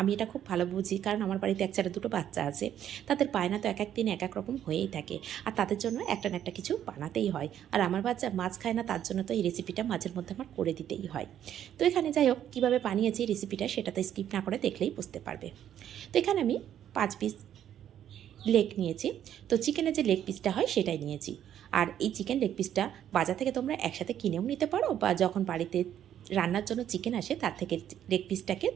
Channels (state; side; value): quieter; left; 10.5 dB